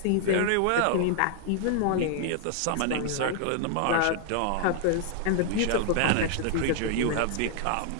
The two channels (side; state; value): both; different; correlation 0.00